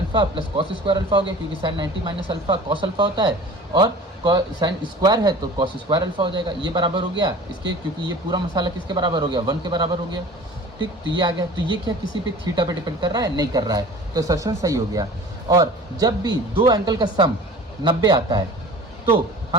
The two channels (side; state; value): both; normal; correlation 0.42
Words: plus cos square alpha हो गया, क्योंकि sine 90 minus alpha cos alpha होता है, और साइन स्क्वायर है तो कॉस स्क्वायर अल्फा हो जाएगा, ये बराबर हो गया इसके, क्योंकि ये पूरा मसाला किसके बराबर हो गया 1 के बराबर हो गया। ठीक, तो ये आ गया, तो ये क्या किसी पे थीटा पे डिपेंड कर रहा है, नहीं कर रहा है, तो असर्शन सही हो गया। और जब भी दो एंगल का सम 90 आता है तो